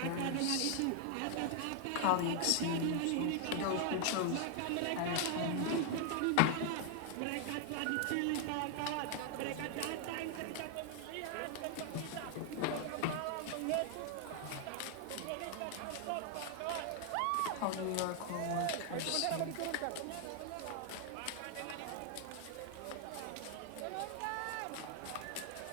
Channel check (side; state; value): both; different; correlation 0.00